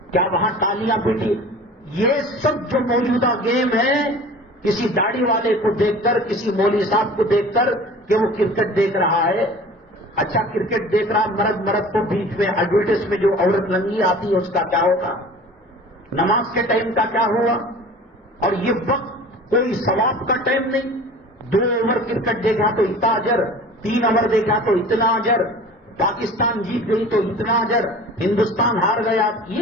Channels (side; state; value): both; normal; correlation 0.42